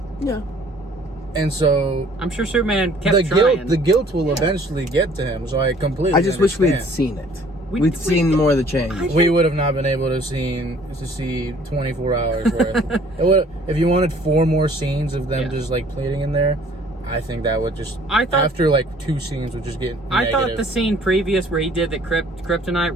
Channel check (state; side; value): normal; both; correlation 0.56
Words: Yeah. And so I'm sure Superman kept trying. The guilt will eventually get to him. So I completely. I just wish understand. we had seen it. We'd seen more of the change. We would have not been able to see 24 hours worth. If you wanted 4 more scenes of them just like pleading in there, I think that would just. After like 2 scenes would just get. I thought the scene previous where he did the kryptonite